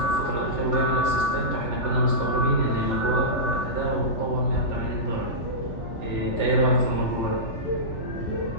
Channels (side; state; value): right; late; 3.4 ms